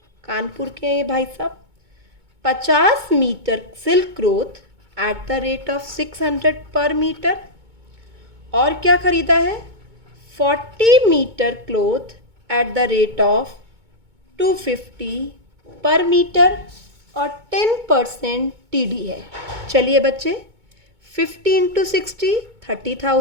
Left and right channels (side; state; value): left; late; 2.2 ms